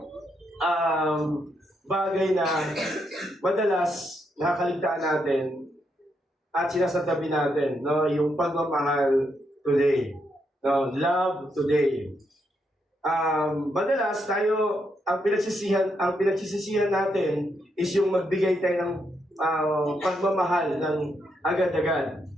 bagay na madalas nakakaligtaan natin at sinasabi natin, no? Yung pagmamahal today. No, love today. Madalas tayo ang pinagsisisihan natin is yung magbigay tayo ng pagmamahal ng agad-agad,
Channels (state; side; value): normal; both; correlation 0.79